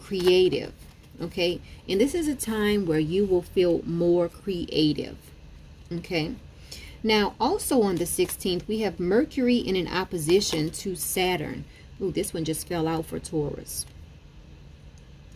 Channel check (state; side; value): identical; both; correlation 1.00